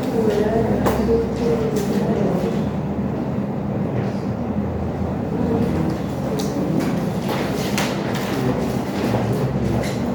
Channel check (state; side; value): identical; both; correlation 1.00